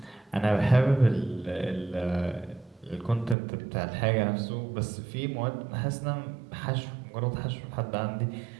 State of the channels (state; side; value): drops out; left; at 3.4 s